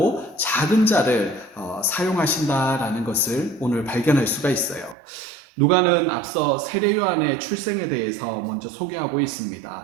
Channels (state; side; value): drops out; left; at 5.0 s